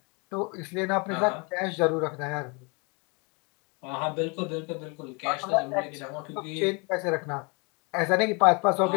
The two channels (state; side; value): quieter; right; 31.6 dB